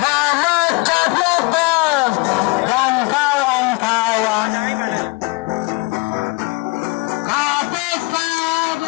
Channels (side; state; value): right; quieter; 25.5 dB